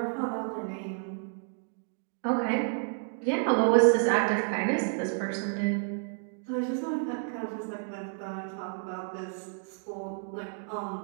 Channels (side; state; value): left; silent; 57 dB below the other